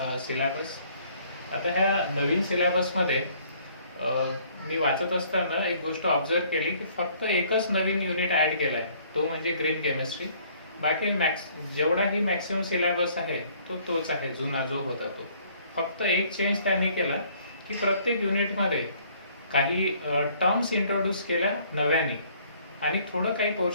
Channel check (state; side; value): inverted; both; correlation -0.60